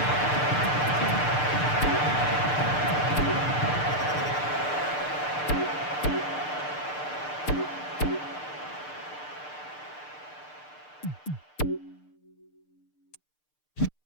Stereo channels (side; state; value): right; late; 6.7 ms